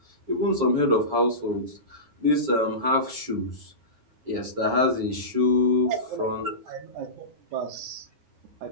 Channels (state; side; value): late; left; 9.6 ms